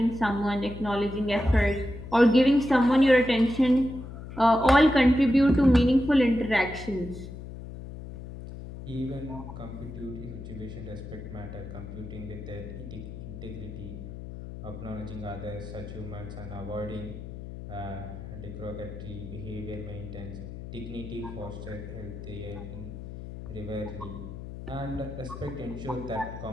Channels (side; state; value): left; noise; hum, 11 dB below the sound